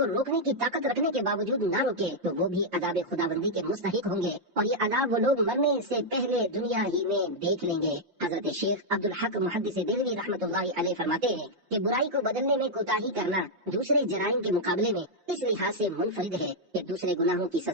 روکنے کی طاقت رکھنے کے باوجود نہ روکے تو وہ بھی عذاب خداوندی کے مستحق ہوں گے، اور یہ عذاب وہ لوگ مرنے سے پہلے دنیا ہی میں دیکھ لیں گے۔ حضرت شیخ عبدالحق محدث دہلوی رحمۃ اللہ علیہ فرماتے ہیں کہ برائی کو بدلنے میں کوتاہی کرنا دوسرے جرائم کے مقابلے میں اس لحاظ سے منفرد ہے کہ دوسرے گناہوں کی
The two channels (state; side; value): late; left; 5.7 ms